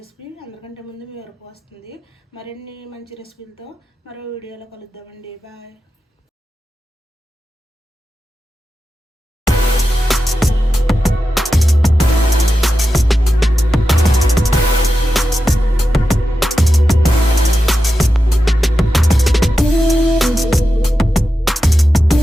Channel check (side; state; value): both; normal; correlation 0.91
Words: అందరికంటే ముందు మీ వరకు వస్తుంది. మరిన్ని మంచి రెసిపీలతో మరో వీడియోలో కలుద్దామండి. బాయ్.